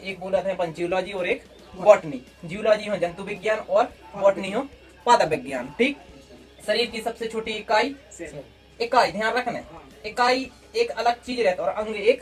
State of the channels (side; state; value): both; identical; correlation 1.00